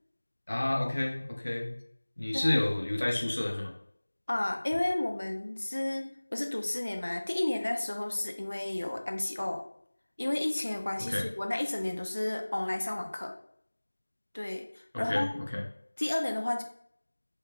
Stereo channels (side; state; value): both; inverted; correlation -1.00